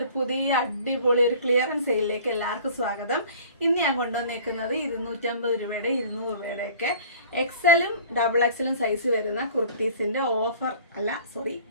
പുതിയ അടിപൊളി ഒരു ക്ലിയറൻസ് സെയിലിലേക്ക് എല്ലാവർക്കും സ്വാഗതം. ഇന്ന് ഞാൻ കൊണ്ടുവന്നേക്കുന്നത് 250 രൂപയുടെ 200 രൂപയുടെ ഒക്കെ എക്സലും ഡബിൾ എക്സലും സൈസ് വരുന്ന കുർത്തീസിന്റെ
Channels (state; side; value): inverted; both; correlation -0.47